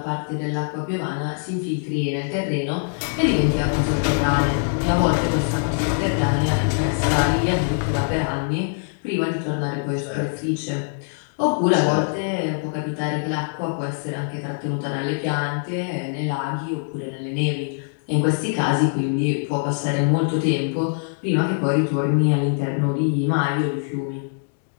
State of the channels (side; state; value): right; silent; 63 dB below the other